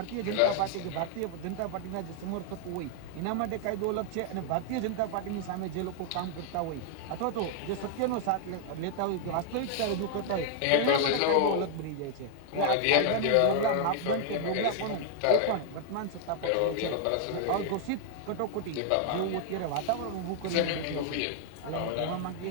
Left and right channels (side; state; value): both; different; correlation 0.00